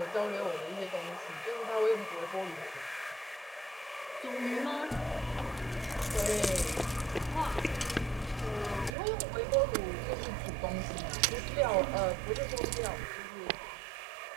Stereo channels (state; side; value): drops out; left; at 8.9 s